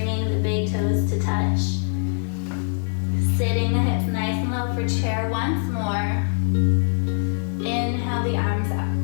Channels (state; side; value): silent; right; 63 dB below the other